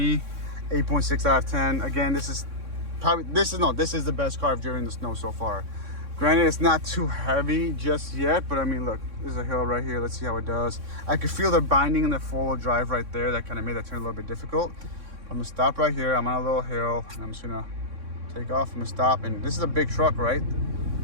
8.6 out of 10. Again, this is the best car I've driven in the snow so far. Granted, it's not too heavy just yet, but I mean, look, there's a hill right here. Let's see how it does. I could feel the binding in the four-wheel drive right there. That kind of made that turn a little bit difficult. I'm gonna stop right here. I'm on a little hill, and I'm just gonna take off. I'm gonna stop, and this is a big truck, right?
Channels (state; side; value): late; left; 3.6 ms